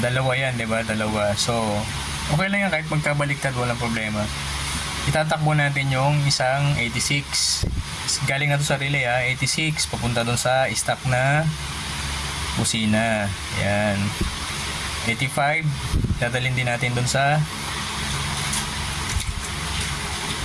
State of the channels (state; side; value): identical; both; correlation 1.00